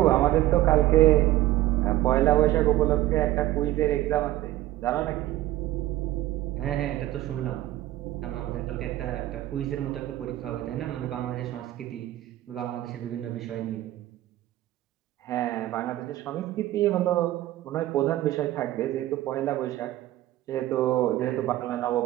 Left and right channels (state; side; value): quieter; left; 15.1 dB